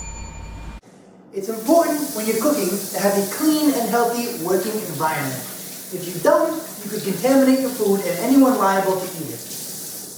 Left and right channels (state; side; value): identical; both; correlation 1.00